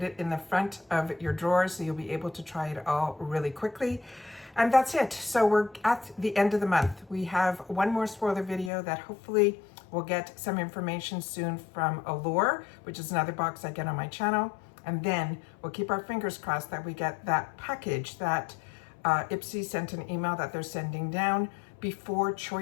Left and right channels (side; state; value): right; drops out; at 8.7 s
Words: it in the front of your drawer so you'll be able to try it all really quickly. And that's it. So we're at the end of the month. We have one more spoiler video that hopefully will get some information soon from Allure, which is another box I get on my channel. And then we'll keep our fingers crossed that we get that package that ipsy sent an email that they're sending down before